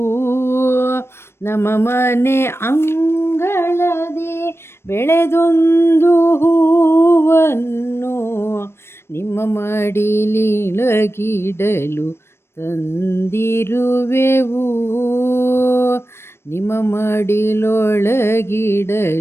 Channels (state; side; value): late; right; 0.12 ms